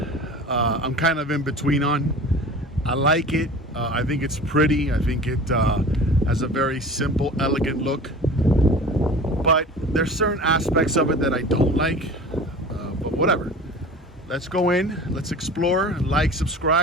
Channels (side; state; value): both; normal; correlation 0.39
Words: I'm kind of in between on. I like it. I think it's pretty. I think it has a very simple, elegant look. But there's certain aspects of it that I don't like. But whatever. Let's go in. Let's explore. Like,